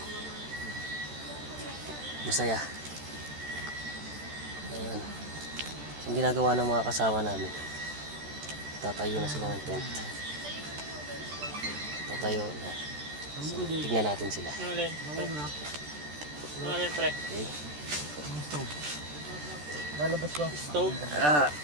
Masaya. Ayan. Ang ginagawa ng mga kasama namin. Tatayo na sila ng tent. Tatayo na. So, tignan natin sila. Ano pre? Okay. Lalabas ba? Stove?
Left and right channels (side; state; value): left; late; 13 ms